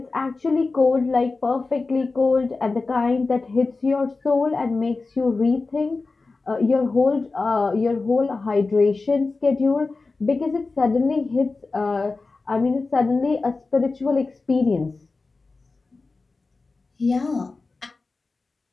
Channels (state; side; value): quieter; right; 3.8 dB